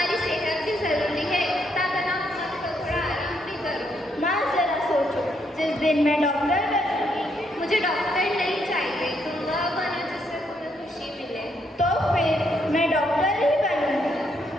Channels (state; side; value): normal; both; correlation 0.75